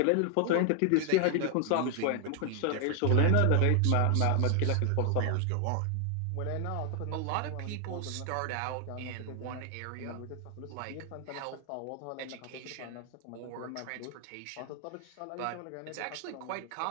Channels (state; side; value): different; both; correlation 0.00